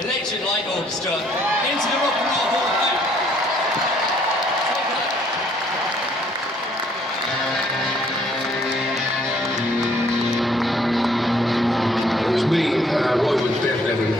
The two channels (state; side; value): normal; both; correlation 0.64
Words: Electric Light Orchestra, into the Rock and Roll Hall of Fame. It was me, Roy Wood, Bev